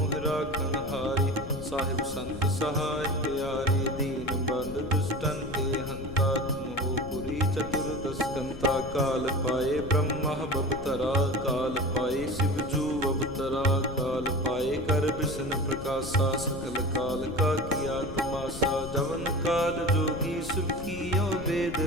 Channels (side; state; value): left; noise; rumble, 12 dB below the sound